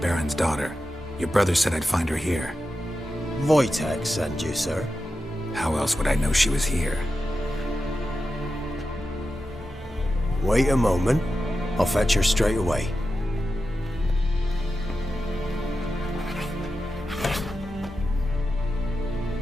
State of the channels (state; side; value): normal; both; correlation 0.90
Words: daughter. Your brother said I'd find her here. Wojtek sent you, sir. How else would I know she was here? Wait a moment. I'll fetch her straight away.